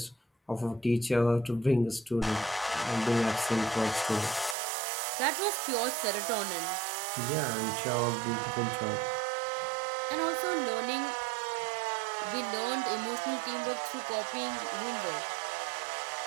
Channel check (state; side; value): drops out; left; at 4.5 s